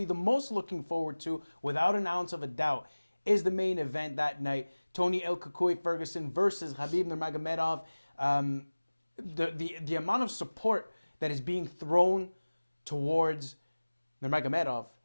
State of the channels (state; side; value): inverted; both; correlation -1.00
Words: the most looking forward to, without an ounce of a doubt, is the main event that night. Tony Ferguson versus Khabib Nurmagomedov. The amount of support that is being thrown towards Nurmagomedov